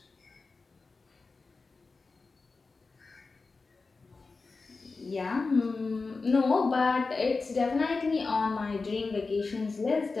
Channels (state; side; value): quieter; right; 4.1 dB